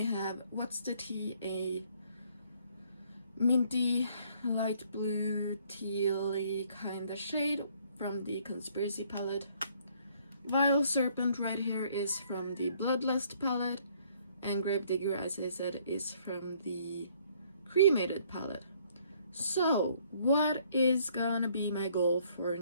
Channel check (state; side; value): inverted; both; correlation -0.64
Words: have What's the Tea, a minty light blue tealy kind of shade from the Conspiracy palette. Vile Serpent right here is from the Bloodlust palette, and Gravedigger, as I said, is from the Cremated palette. So, what is gonna be my goal for